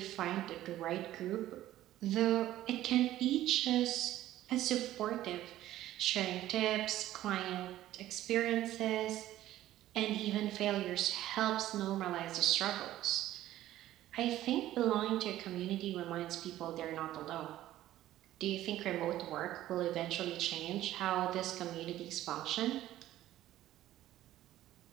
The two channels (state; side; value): quieter; left; 14.0 dB